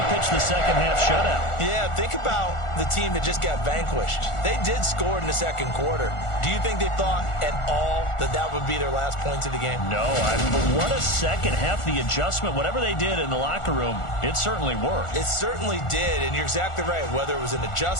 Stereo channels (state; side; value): late; right; 1.4 ms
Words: pitched the second-half shutout. yeah, think about the team that just got vanquished. They did score in the 2nd quarter. Do you think they thought at all that that would be their last points of the game? No, but what a second half. The adjustment, whatever they did in the locker room, it certainly worked. It certainly did, and you're exactly right. Whether it was an